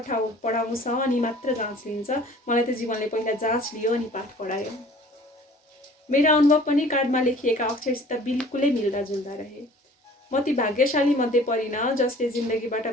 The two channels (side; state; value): both; normal; correlation 0.49